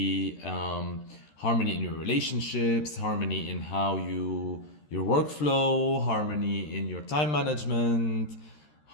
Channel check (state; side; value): late; right; 13 ms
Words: harmony in your relationships, harmony in how your workflow, harmony in your time management,